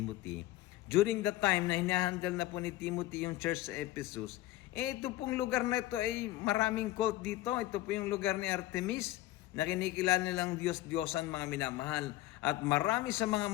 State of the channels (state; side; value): quieter; right; 16.1 dB